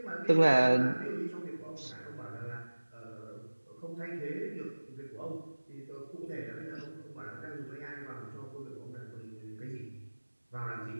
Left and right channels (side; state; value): both; inverted; correlation -1.00